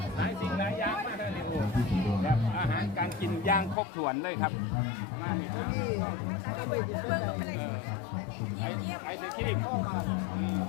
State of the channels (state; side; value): drops out; right; at 3.8 s